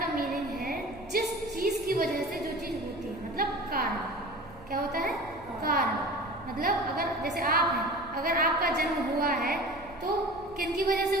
का मीनिंग है जिस चीज की वजह से जो चीज होती है, मतलब कारण। क्या होता है? कारण। मतलब अगर जैसे आप हैं, अगर आपका जन्म हुआ है तो किन की वजह से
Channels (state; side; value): noise; right; hum, 21 dB below the sound